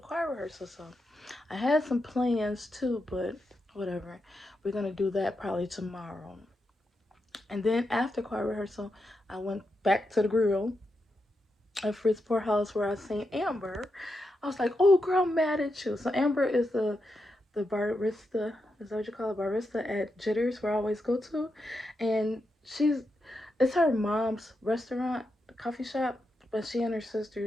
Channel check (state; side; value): normal; both; correlation 0.85